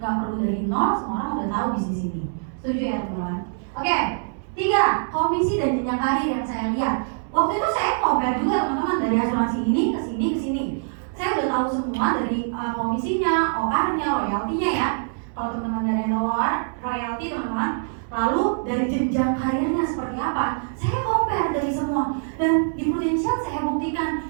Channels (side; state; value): left; silent; 62 dB below the other